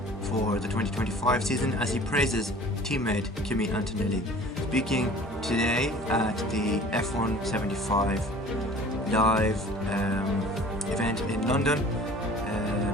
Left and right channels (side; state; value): both; normal; correlation 0.46